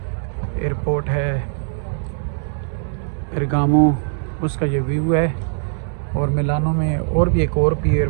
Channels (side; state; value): left; silent; digital silence